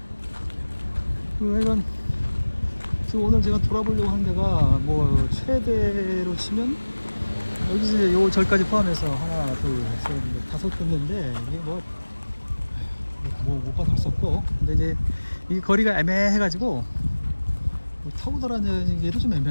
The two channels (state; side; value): inverted; both; correlation -1.00